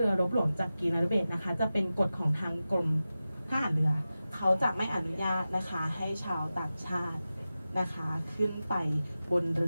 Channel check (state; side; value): inverted; both; correlation -0.94